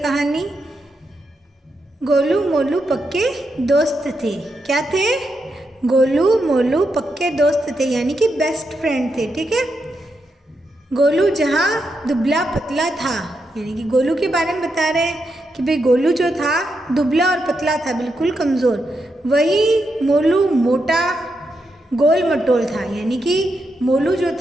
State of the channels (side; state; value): both; normal; correlation 0.83